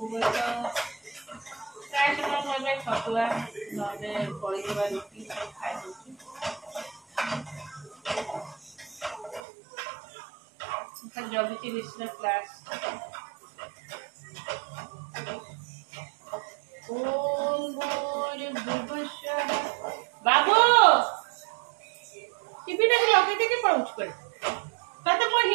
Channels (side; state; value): left; drops out; at 9.4 s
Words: प्राय समय छतुआ ना पड़ेगा रुटी सब खाई जगती ऋषि क्लास बाबू टीवी देख लगे थे पढ़ुच कर तते मो